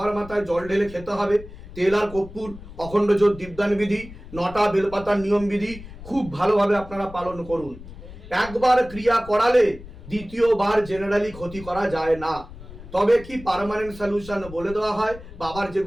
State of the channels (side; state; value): left; noise; rumble, 16 dB below the sound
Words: মাথায় জল ঢেলে খেতে হবে, তেল আর কর্পূর, অখণ্ড জ্যোত দীপদান বিধি, 9টা বেলপাতার নিয়ম বিধি খুব ভালোভাবে আপনারা পালন করুন। একবার ক্রিয়া করালে দ্বিতীয়বার জেনারেলি ক্ষতি করা যায় না। তবে কি পার্মানেন্ট সলিউশন বলে দেওয়া হয়, বাবার